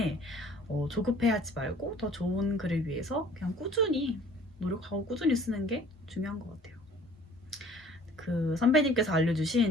조급해하지 말고 더 좋은 글을 위해서 그냥 꾸준히 노력하고 꾸준히 쓰는 게 중요한 것 같아요. 그 선배님께서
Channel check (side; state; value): both; normal; correlation 0.51